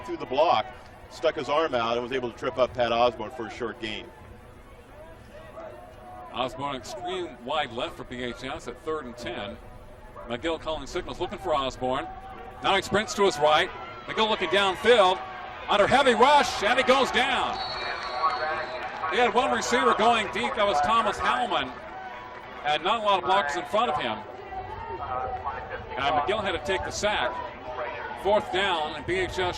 through the block, stuck his arm out, and was able to trip up Pat Osborne for a short gain. Osborne extreme wide left for BHS at 3rd and 10. McGill calling signals, looking for Osborne. Now he sprints to his right. McGill looking downfield. Under heavy rush, and he goes down. He had one receiver going deep. That was Thomas Howman. And not a lot of blockers in front of him. And McGill had to take the sack. 4th down, and BHS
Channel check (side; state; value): both; identical; correlation 1.00